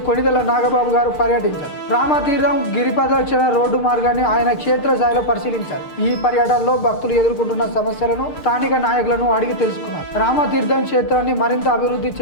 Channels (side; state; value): right; late; 6.6 ms